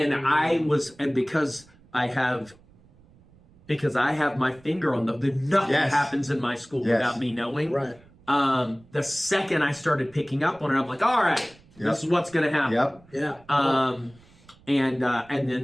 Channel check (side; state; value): right; noise; rumble, 27 dB below the sound